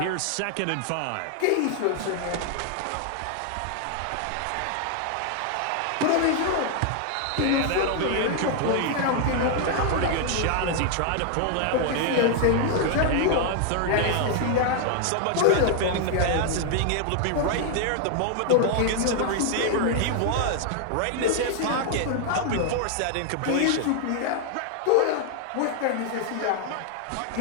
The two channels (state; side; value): different; both; correlation 0.00